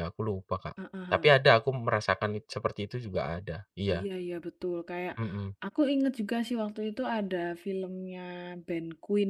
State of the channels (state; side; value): identical; both; correlation 1.00